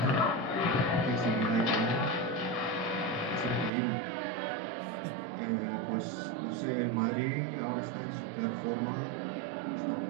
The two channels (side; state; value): left; drops out; at 3.7 s